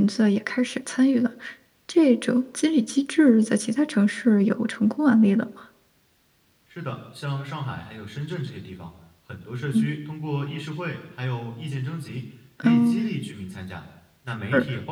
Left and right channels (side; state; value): both; identical; correlation 1.00